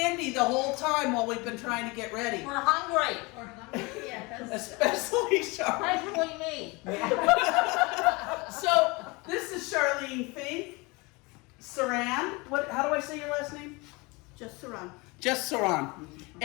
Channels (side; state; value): right; quieter; 25.9 dB